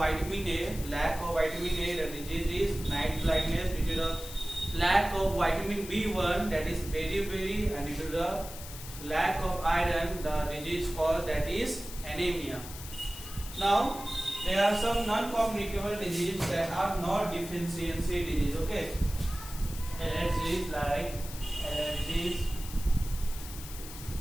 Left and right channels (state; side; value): noise; left; hiss, 13 dB below the sound